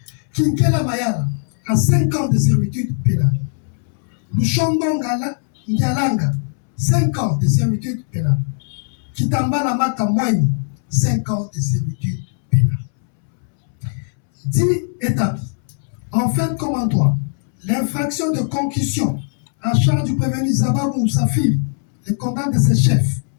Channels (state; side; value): silent; right; 66 dB below the other